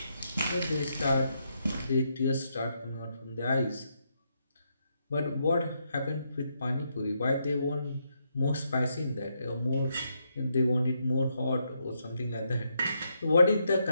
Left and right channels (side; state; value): both; inverted; correlation -0.79